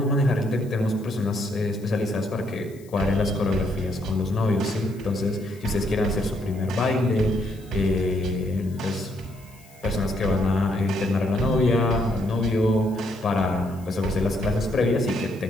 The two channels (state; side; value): noise; left; hiss, 26 dB below the sound